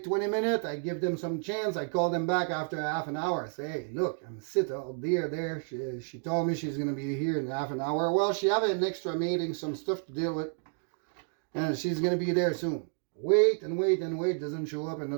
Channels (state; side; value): silent; left; 57 dB below the other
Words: 20 minutes. I give them some chance. I call them back after half an hour. I say, hey, look, I'm sitting out there. She told me she's going to be here in half an hour. Well, she have an extra meeting, some stuff to deal with. And she's going to be there soon. Wait and wait and wait. Doesn't show up.